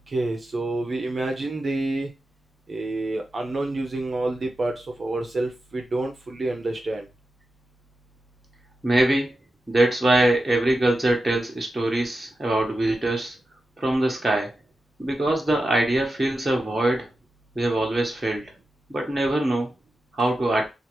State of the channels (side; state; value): both; normal; correlation 0.91